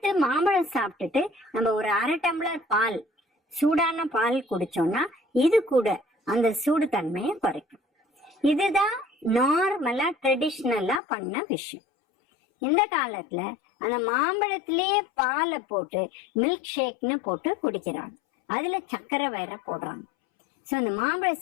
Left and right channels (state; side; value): drops out; right; at 11.0 s